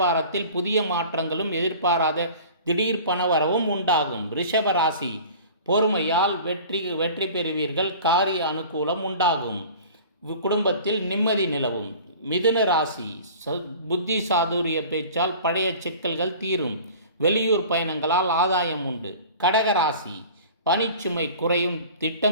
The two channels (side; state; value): both; inverted; correlation -0.42